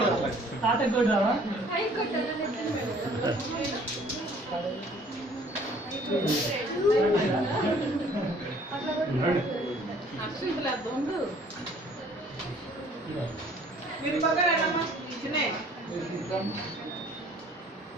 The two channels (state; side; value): normal; both; correlation 0.56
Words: మీరు పక్కనమ్మా చిన్నే